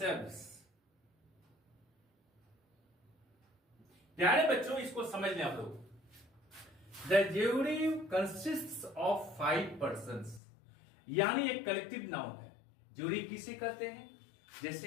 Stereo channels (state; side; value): drops out; right; at 10.4 s